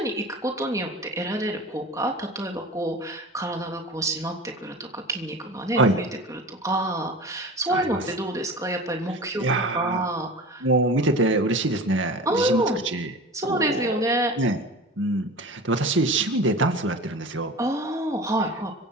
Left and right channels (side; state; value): both; normal; correlation 0.35